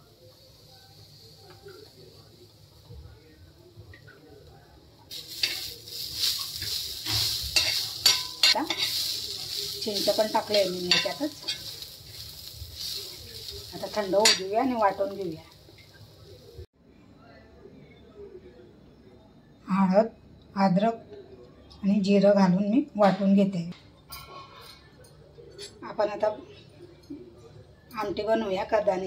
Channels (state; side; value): identical; both; correlation 1.00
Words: चिंच पण टाकले मी याच्यातच। आता थंड होऊ देऊया आणि वाटून घेऊया। हळद, अद्रक आणि जिरं घालून मी वाटून घेते। आपण आता आमटी बनवूया